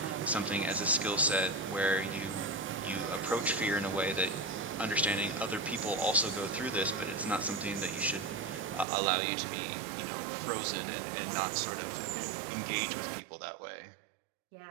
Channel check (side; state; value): left; drops out; at 8.8 s